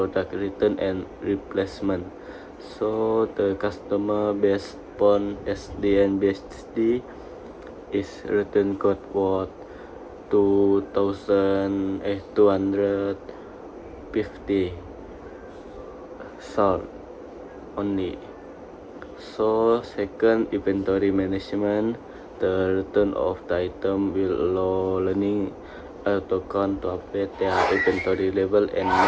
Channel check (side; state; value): both; identical; correlation 1.00